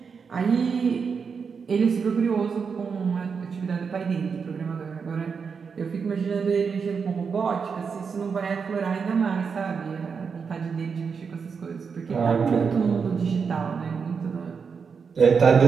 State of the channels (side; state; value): left; quieter; 5.8 dB